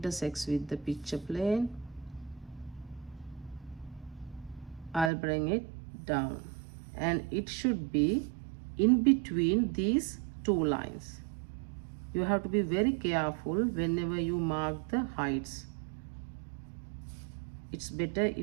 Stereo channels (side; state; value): left; drops out; at 5.1 s